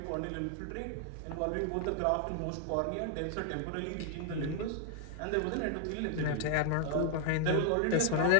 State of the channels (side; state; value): both; different; correlation 0.00